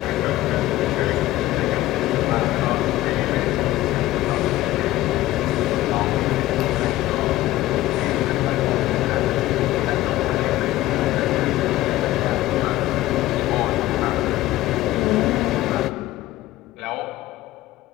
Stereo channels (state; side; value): quieter; right; 16.1 dB